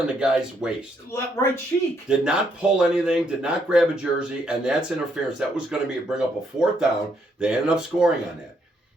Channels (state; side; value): normal; both; correlation 0.73